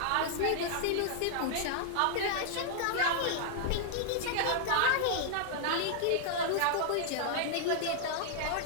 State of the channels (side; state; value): both; different; correlation -0.01